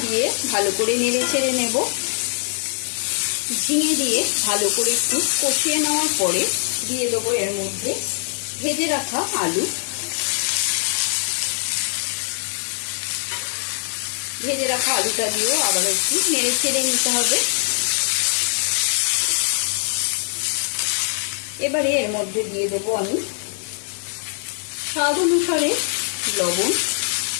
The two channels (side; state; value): right; silent; 64 dB below the other